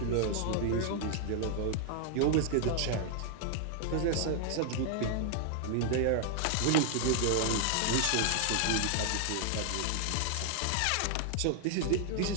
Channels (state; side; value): different; both; correlation 0.00